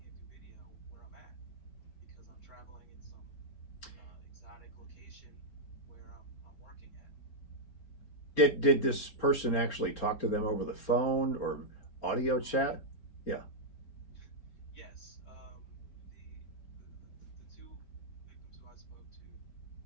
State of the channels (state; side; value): late; right; 4.3 ms